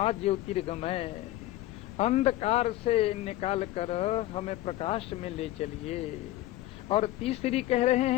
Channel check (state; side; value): quieter; right; 15.9 dB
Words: ज्योतिर्गमय। अंधकार से निकाल कर हमें प्रकाश में ले चलिए। और तीसरी कह रहे